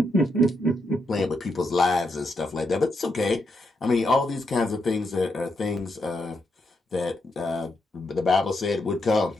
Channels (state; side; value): normal; both; correlation 0.82